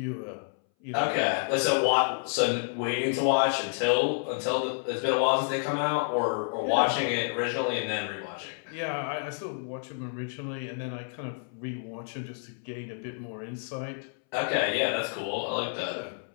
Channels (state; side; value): silent; right; 58 dB below the other